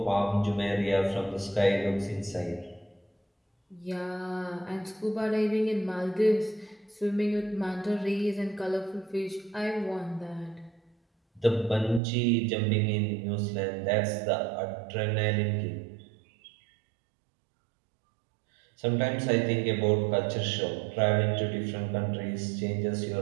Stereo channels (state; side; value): drops out; left; at 12.0 s